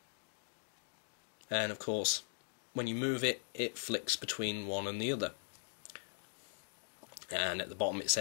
And of course, when you move it, it flicks between one and the other. And at the bottom it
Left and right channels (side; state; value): right; silent; digital silence